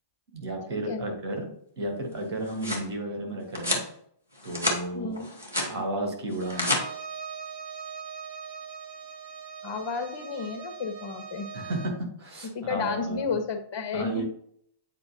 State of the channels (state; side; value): inverted; both; correlation -0.30